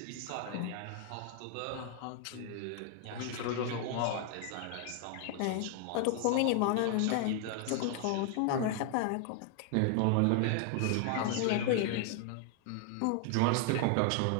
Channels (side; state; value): both; different; correlation 0.00